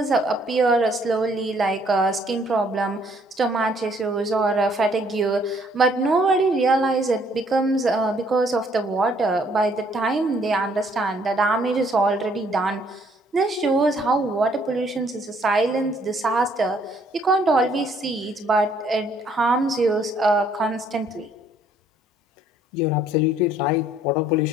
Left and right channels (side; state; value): both; normal; correlation 0.64